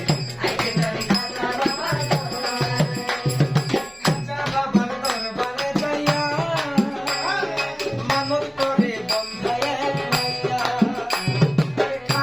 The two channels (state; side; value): identical; both; correlation 1.00